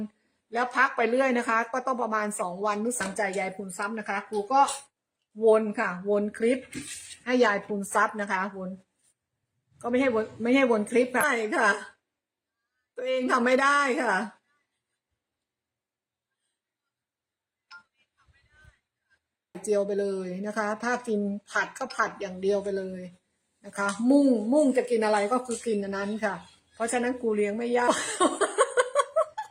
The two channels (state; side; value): identical; both; correlation 1.00